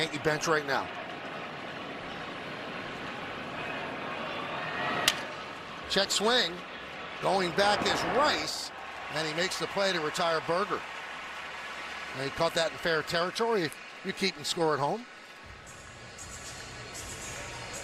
bench right now. Check swing. Going back is Rice, and he makes the play to retire Berger. And he caught that in fair territory. You're keeping score at home.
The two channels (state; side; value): identical; both; correlation 1.00